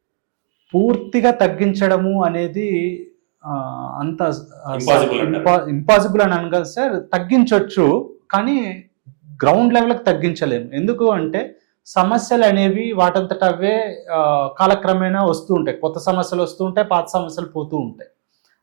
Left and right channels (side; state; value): left; silent; digital silence